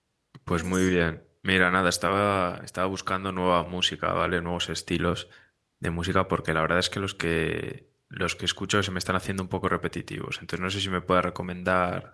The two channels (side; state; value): both; identical; correlation 1.00